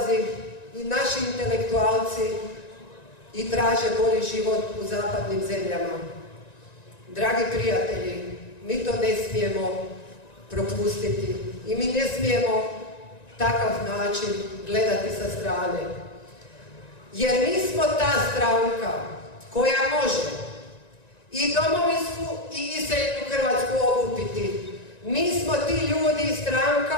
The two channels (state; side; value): late; right; 1.9 ms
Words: i naši intelektualci i traže bolji život u zapadnim zemljama. Dragi prijatelji, mi to ne smijemo propustiti i mi ne smijemo takav način gledati sa strane. Jer mi smo ta stranka koja može i domovinsku i iseljenu Hrvatsku okupiti. Mi smo ti ljudi i